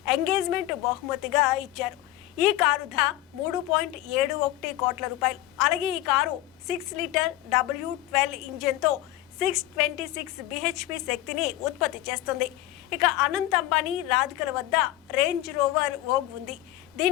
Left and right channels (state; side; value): quieter; right; 15.4 dB